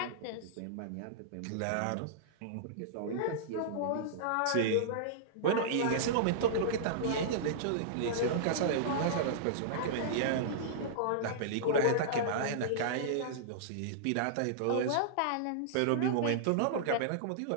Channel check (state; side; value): different; both; correlation -0.02